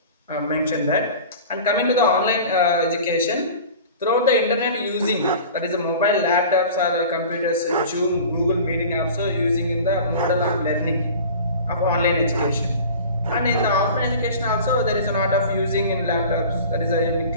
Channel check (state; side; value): inverted; both; correlation -0.40